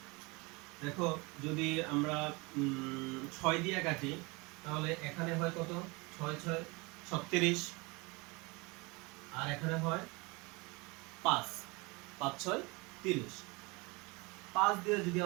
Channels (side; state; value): left; quieter; 26.5 dB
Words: দেখো যদি আমরা 6 দিয়ে কাটি, তাহলে এখানে হয় কত, 6 6 36, আর এখানে হয় 5 5 6 30। 5 দিয়ে যদি